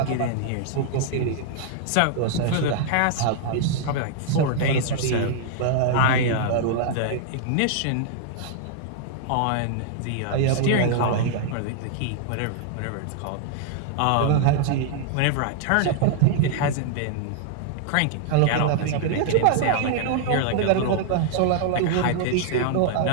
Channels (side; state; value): both; different; correlation -0.01